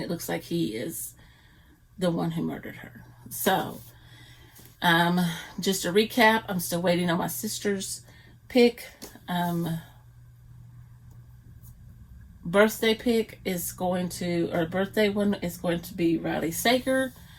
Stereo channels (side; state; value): both; identical; correlation 1.00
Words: looks like he is the one who murdered her. So, just a recap, I'm still waiting on my sister's pick. Birthday pick is going to, or birthday one is going to be Riley Sager.